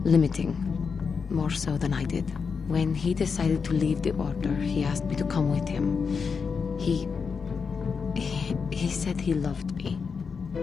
limiting. More so than I did. When he decided to leave the Order, he asked me to come with him. He said he loved me.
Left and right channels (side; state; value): right; quieter; 5.6 dB